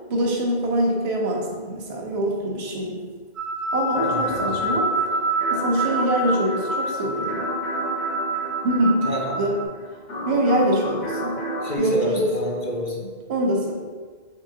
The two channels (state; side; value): late; right; 2.0 ms